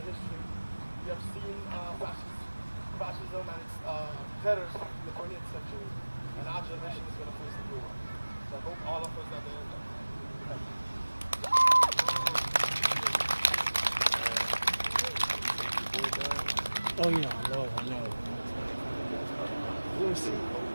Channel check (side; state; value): both; inverted; correlation -1.00